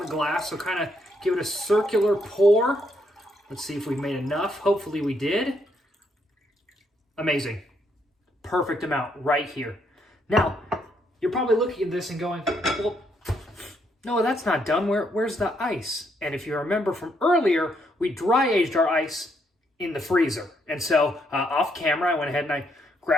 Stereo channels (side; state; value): both; normal; correlation 0.74